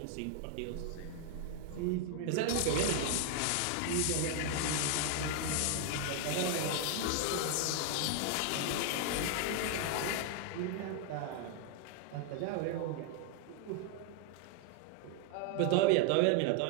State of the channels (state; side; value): different; both; correlation 0.00